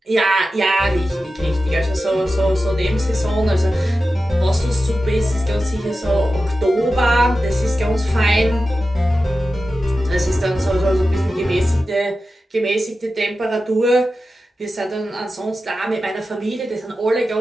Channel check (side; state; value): both; normal; correlation 0.93